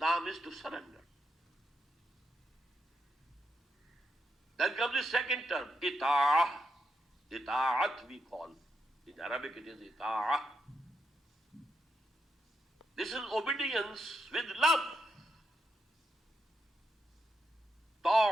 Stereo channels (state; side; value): normal; both; correlation 0.83